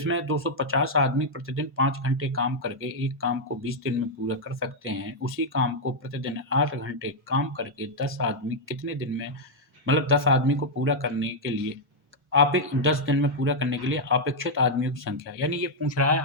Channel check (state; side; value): normal; both; correlation -0.03